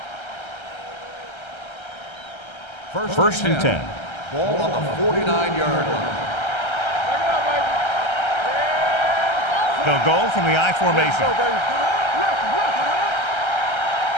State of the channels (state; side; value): late; right; 1.3 ms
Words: First and 10. Ball on the 49-yard line. They'll go from the I formation.